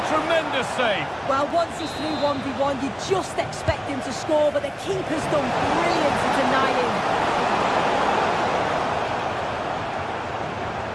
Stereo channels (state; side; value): identical; both; correlation 1.00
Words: tremendous save. Well, once he's through 1v1, you just expect him to score, but the keeper's done brilliant to deny him.